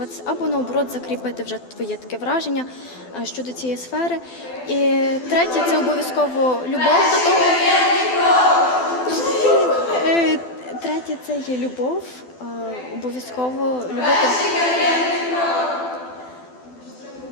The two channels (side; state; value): right; late; 12 ms